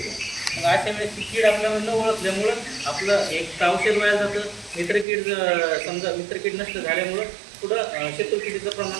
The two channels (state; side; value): drops out; left; at 5.1 s